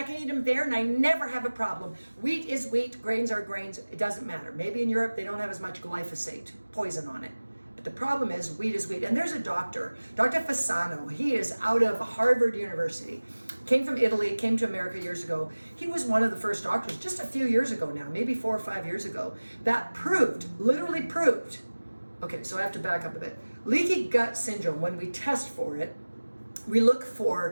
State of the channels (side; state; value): both; inverted; correlation -1.00